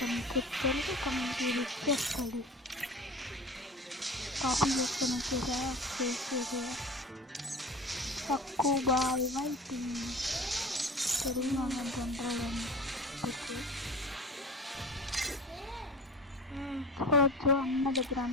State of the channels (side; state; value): both; normal; correlation 0.37